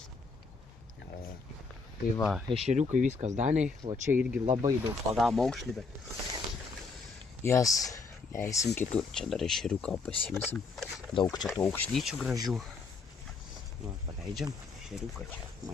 Tai va, ešeriukai viskas Daniai, o čia irgi labai daug pagavom aukšlį, bet jas leisim kitur. Čia dar ešeriuką pasimsim. Daug čia tų aukšlyčių gražių. Va, paleidžiam ešeriuką čia,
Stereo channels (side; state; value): right; quieter; 4.4 dB